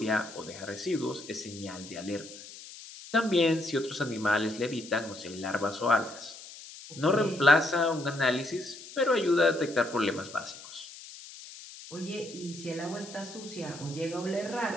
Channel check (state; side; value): noise; left; hiss, 15 dB below the sound